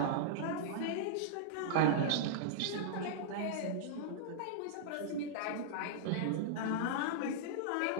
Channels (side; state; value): both; different; correlation -0.02